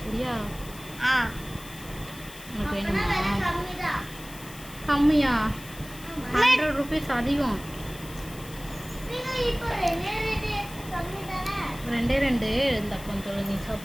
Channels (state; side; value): noise; left; hiss, 17 dB below the sound